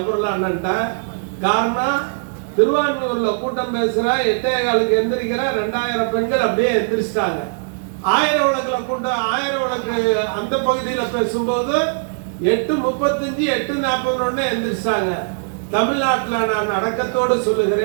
அண்ணன்ட்ட. காரணம், திருவான்மியூர்ல கூட்டம் பேசுற 8:15 எந்திரிக்கிற 2000 பெண்கள் அப்படியே எந்திரிச்சிட்டாங்க. 1000 விளக்குல கூட்டம், 1000 விளக்கு அந்த பகுதியில பேசும்போது 8:35 8:41 எந்திரிச்சாங்க. தமிழ்நாட்டில் நான் அடக்கத்தோடு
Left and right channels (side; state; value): left; silent; digital silence